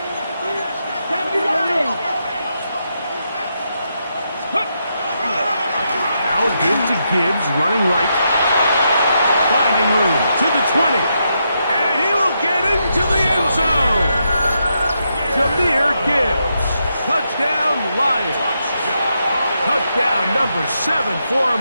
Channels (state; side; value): inverted; both; correlation -0.82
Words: Now a give to Gibbs, running right. Finding room to the 20. And he will get into the end zone. Jahmyr Gibbs. Touchdown, Lions. Touchdown number 7 for